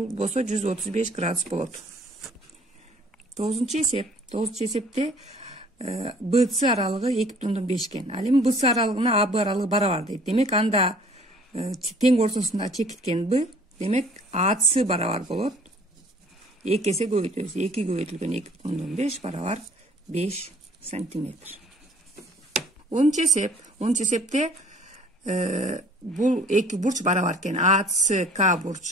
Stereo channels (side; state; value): both; normal; correlation 0.54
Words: болсо 135 градус болот. 9-нчы эсепте BC аралыгы 2,5 экен. Ал эми BC аралыгына AB аралыгы барабар дейт. Демек, анда тең ортосунда чекиткен B, демек AC барабар болот. 2 эсе көбөйтөбүз. 2 көбөйтүлгөн 2,5 барабар 5 сантиметр. 10-нчы эсепте бул эки бурч барабар экен. ACK